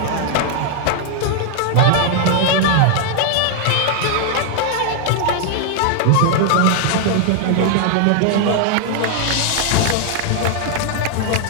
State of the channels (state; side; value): different; both; correlation 0.00